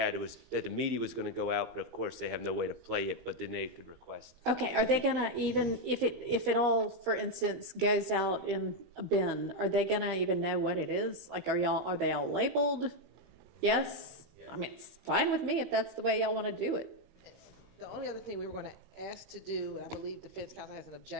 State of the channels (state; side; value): late; left; 17 ms